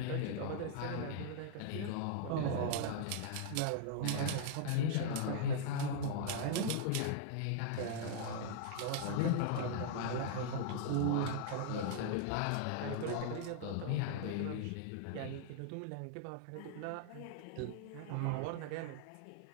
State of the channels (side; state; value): both; different; correlation -0.01